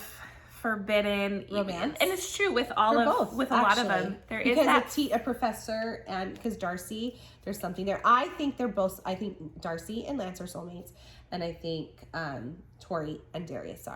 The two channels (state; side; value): identical; both; correlation 1.00